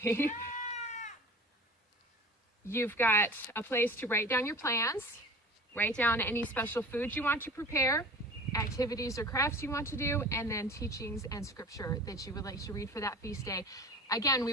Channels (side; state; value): both; normal; correlation 0.39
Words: you've got a place to write down your plans, write down any special foods you want to prepare, activities or crafts you want to do, and then teachings and scripture that you would like to read for that feast day. Again,